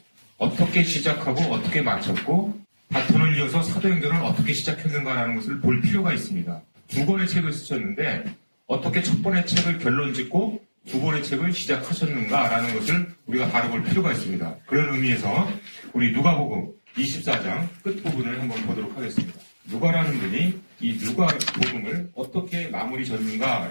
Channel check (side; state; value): both; inverted; correlation -1.00